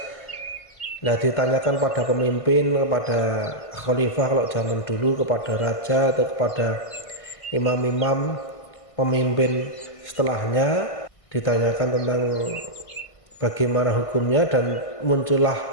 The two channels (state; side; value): late; right; 1.5 ms